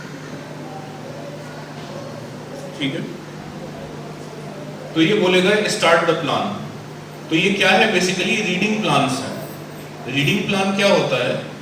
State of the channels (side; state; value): both; identical; correlation 1.00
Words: ठीक है। तो ये बोलेगा स्टार्ट द प्लान। तो ये क्या है, बेसिकली रीडिंग प्लान्स है। रीडिंग प्लान क्या होता है,